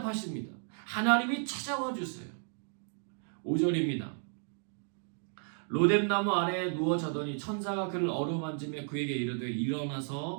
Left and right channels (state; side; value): silent; left; 56 dB below the other